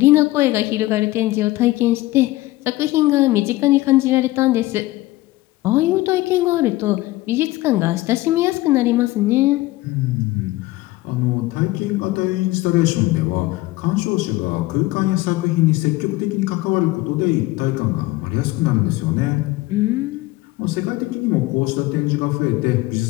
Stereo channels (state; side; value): quieter; right; 18.6 dB